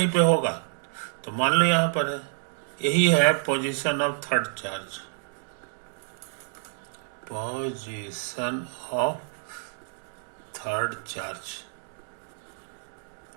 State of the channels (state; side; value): silent; left; digital silence